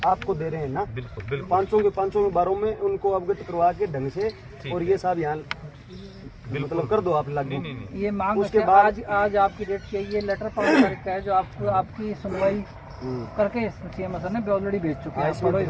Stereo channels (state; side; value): identical; both; correlation 1.00